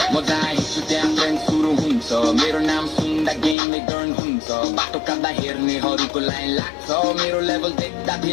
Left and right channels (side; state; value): right; drops out; at 3.6 s